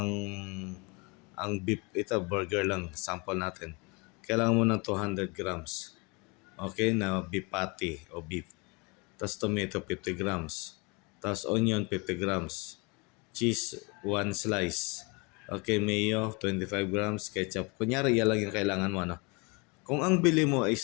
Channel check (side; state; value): right; quieter; 29.5 dB